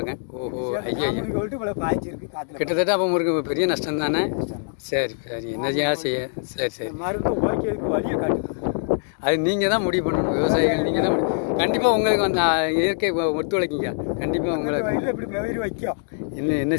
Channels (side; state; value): right; silent; digital silence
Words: ஓஹோ, ஐயோ, கிட்டத்தட்ட அப்போ உங்களுக்கு பெரிய நஷ்டம் தானே? சரி சரி, என்னையா செய்ய? சரி மருந்து ஓகேக்கு வழியை காட்டுது. அது நீங்கள் தான் முடிவு பண்ணணும். விவசாயிகள் நீங்கள் தான் கண்டிப்பாக உங்களுக்கு அந்த இயற்கை ஒத்துழைக்கிங்க. கண்டிப்பாக உங்களுக்கு இப்படி வைக்கும். என்ன